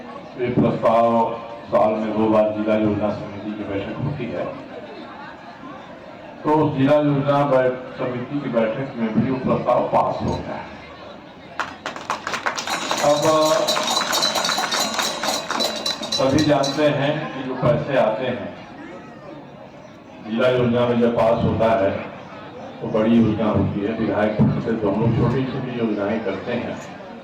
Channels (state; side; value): identical; both; correlation 1.00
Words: ये प्रस्ताव साल में 2 बार जिला योजना समिति की बैठक होती है, तो उस जिला योजना समिति की बैठक में भी वो प्रस्ताव पास हो गया है। अब सभी जानते हैं कि जो पैसे आते हैं जिला योजना में जब पास होता है तो बड़ी योजना होती है, विधायक से तो हम लोग छोटी छोटी योजनाएं करते हैं।